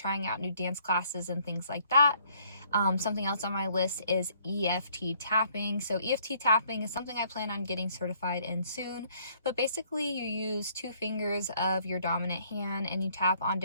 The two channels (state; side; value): inverted; both; correlation -0.64